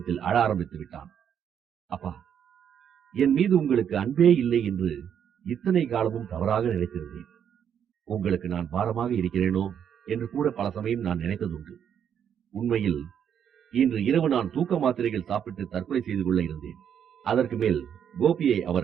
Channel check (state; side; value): quieter; left; 8.6 dB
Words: அழ ஆரம்பித்து விட்டான். அப்பா, என் மீது உங்களுக்கு அன்பே இல்லை என்று இத்தனை காலமும் தவறாக நினைத்திருந்தேன். உங்களுக்கு நான் பாரமாக இருக்கிறேனோ என்று கூட பல சமயம் நான் நினைத்ததுண்டு. உண்மையில் இன்று இரவு நான் தூக்க மாத்திரைகள் சாப்பிட்டு தற்கொலை செய்து கொள்ள இருந்தேன். அதற்கு மேல் கோபியை